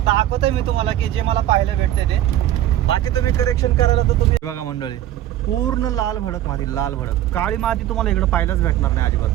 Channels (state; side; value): quieter; left; 12.7 dB